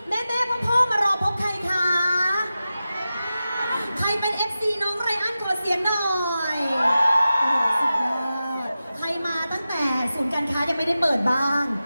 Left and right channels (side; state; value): both; inverted; correlation -0.93